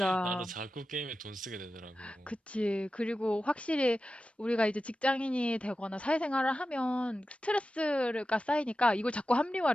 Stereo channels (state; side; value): normal; both; correlation 0.93